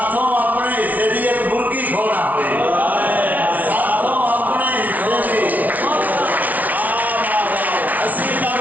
अपने हिस्से दी एक मुर्गी खोना हुई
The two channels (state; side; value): late; left; 0.074 ms